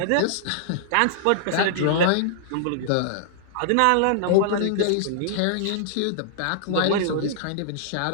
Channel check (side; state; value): both; different; correlation -0.01